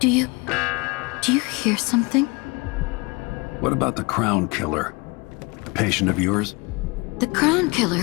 you hear something? What about the Crown Killer? A patient of yours? The Crown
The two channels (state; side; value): quieter; right; 26.9 dB